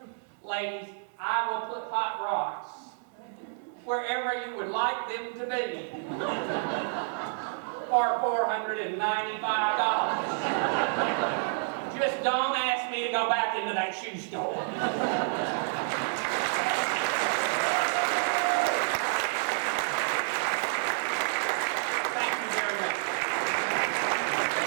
Ladies, I will put hot rocks wherever you would like them to be for $495. Just don't ask me to go back into that shoe store.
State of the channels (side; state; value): left; silent; digital silence